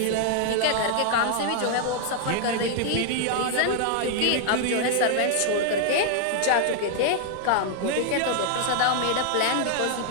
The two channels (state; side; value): different; both; correlation -0.01